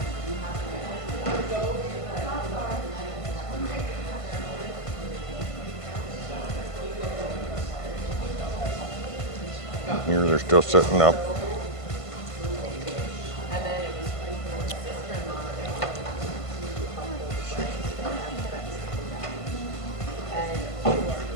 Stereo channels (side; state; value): right; late; 1.5 ms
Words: Here they're still sitting up.